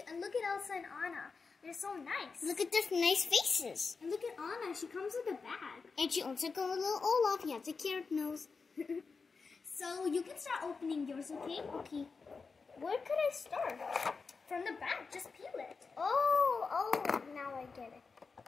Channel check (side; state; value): right; quieter; 4.8 dB